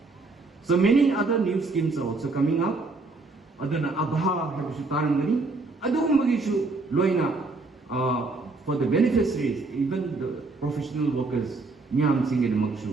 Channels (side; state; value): left; quieter; 3.6 dB